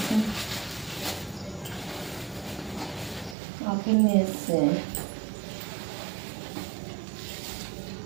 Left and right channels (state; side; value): drops out; left; at 3.4 s